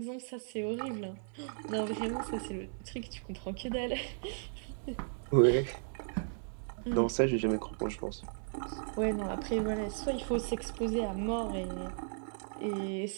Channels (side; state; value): left; silent; 54 dB below the other